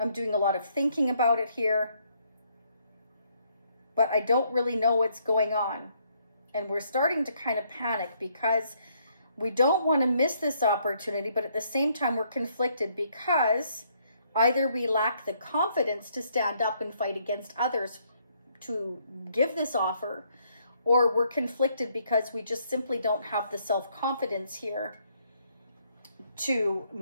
doing a lot of thinking about it here. But I don't really know what's going on. And we're starting to kind of panic because we don't want to miss this opportunity. But at the same time, we're conflicted because either we lack the confidence to stand up and fight against others to give this offer, or we're conflicted because we just simply don't have the self-confidence here to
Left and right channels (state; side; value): inverted; both; correlation -0.70